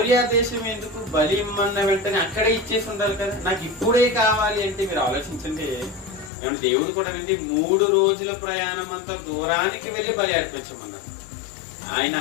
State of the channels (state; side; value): drops out; right; at 6.3 s